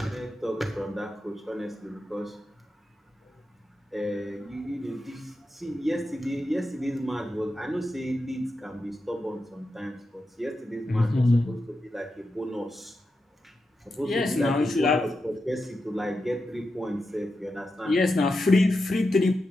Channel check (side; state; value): both; normal; correlation 0.89